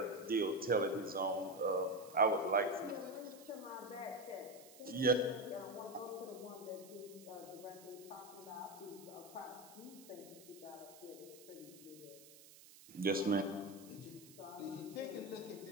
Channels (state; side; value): noise; right; hiss, 19 dB below the sound